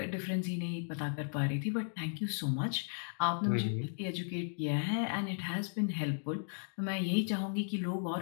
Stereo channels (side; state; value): right; silent; digital silence